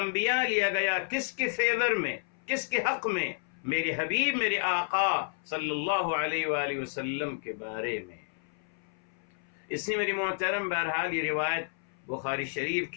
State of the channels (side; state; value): right; silent; 57 dB below the other